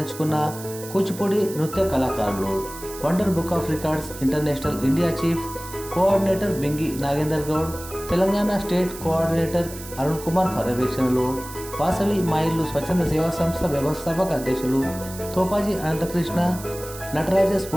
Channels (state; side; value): noise; right; hiss, 14 dB below the sound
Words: కూచిపూడి నృత్య కళాకారులు. Wonder book of records international India chief coordinator Bingi Nagender Goud, Telangana state coordinator Arun Kumar పర్యవేక్షణలో వాసవి మా ఇల్లు స్వచ్ఛంద సేవా సంస్థ వ్యవస్థాపక అధ్యక్షులు తోపాజీ అనంతకృష్ణ, నటరాజ